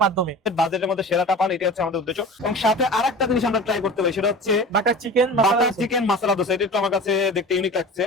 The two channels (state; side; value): normal; both; correlation 0.36